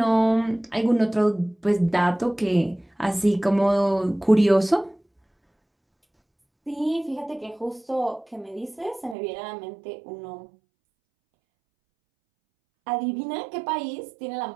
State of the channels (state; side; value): drops out; left; at 9.2 s